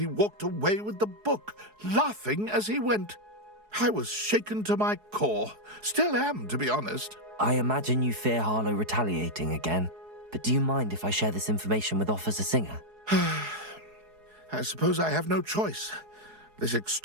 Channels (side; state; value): left; late; 4.7 ms